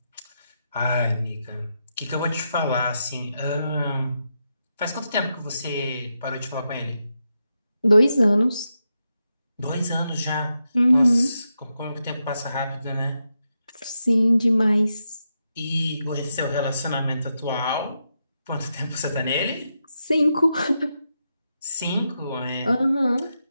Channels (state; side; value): inverted; both; correlation -0.86